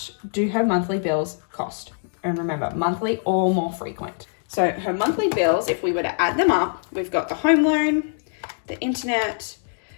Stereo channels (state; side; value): silent; right; digital silence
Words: do her monthly bills cost. And remember, monthly or more frequent. So her monthly bills, if we were to add them up, we've got the home loan, the internet,